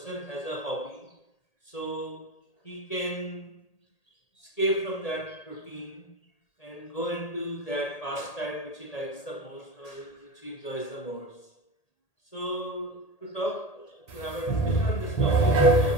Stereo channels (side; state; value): right; late; 1.8 ms